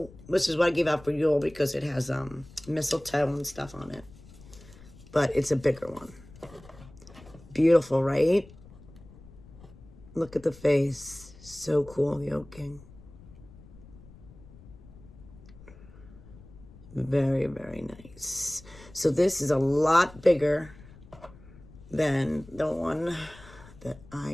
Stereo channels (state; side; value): noise; left; rumble, 21 dB below the sound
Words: which is what I gave out for Yule because it has mistletoe and stuff on it. But it's a bigger one. Beautiful, right? Look at the face. So cool, the Oak King. Very, very nice. So this is a lot bigger than the one that